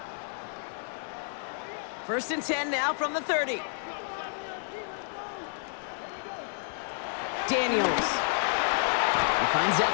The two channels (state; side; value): silent; right; digital silence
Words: First and 10 now from the 30. Daniels. He finds